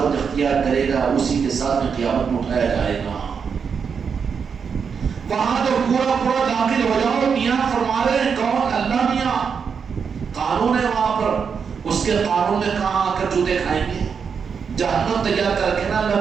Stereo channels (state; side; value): quieter; left; 6.3 dB